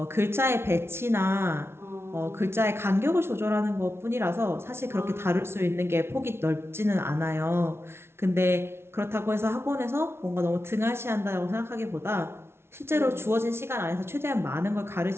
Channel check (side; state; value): left; late; 0.12 ms